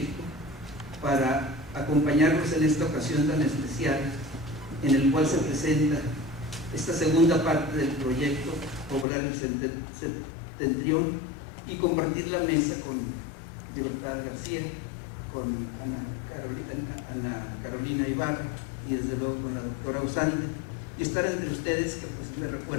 para acompañarnos en esta ocasión tan especial en el cual se presenta esta segunda parte del proyecto Poblar el Septentrión y compartir la mesa con Libertad García, con Ana Carolina Ibarra y desde luego con la doctora Usande, y estar entre ustedes que pues me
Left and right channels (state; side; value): drops out; right; at 9.1 s